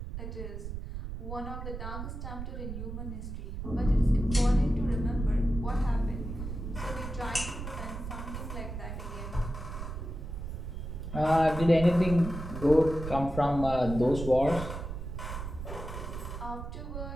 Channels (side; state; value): right; noise; rumble, 7 dB below the sound